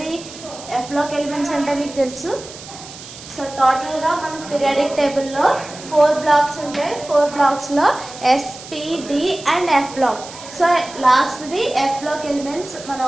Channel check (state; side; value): noise; right; hiss, 15 dB below the sound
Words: F block elements అంటే మీకు తెలుసు. So టోటల్గా మన periodic టేబుల్లో 4 blocks ఉంటాయి. 4 బ్లాక్స్లో S, P, D and F block. So లాస్ట్ది F block elements మనం